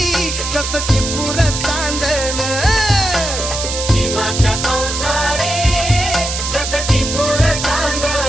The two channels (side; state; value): right; noise; hiss, 4 dB below the sound